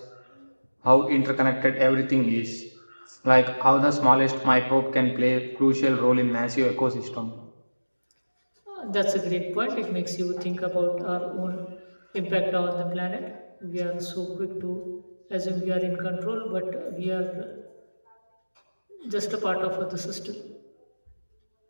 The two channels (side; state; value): both; inverted; correlation -1.00